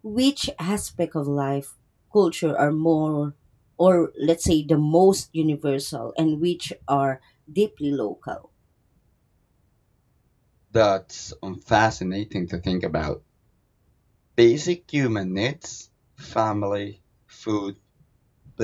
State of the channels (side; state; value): both; identical; correlation 1.00